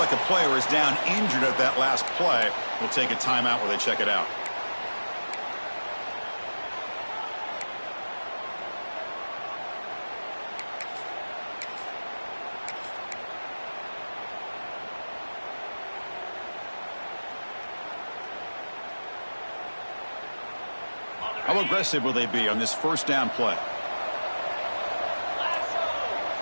a player is down injured at that last play. We'll take a timeout where they check it out. How aggressive will they be on this first down play?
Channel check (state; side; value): inverted; both; correlation -1.00